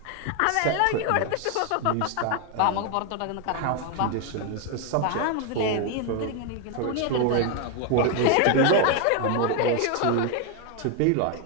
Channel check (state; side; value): different; both; correlation 0.01